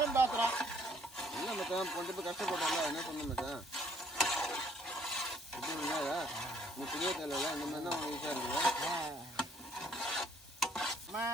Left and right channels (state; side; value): normal; both; correlation 0.62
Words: பேசுகிறான். இல்லை மச்சான் கொஞ்சம் போய் கஷ்டப்பட்டால என்ன சொன்னேன் மச்சான்? இப்படி இல்லையா நீ புரிய தேவையில்ல. இந்த மாதிரி தான் உனக்கு ஈஸியாக இருக்குது.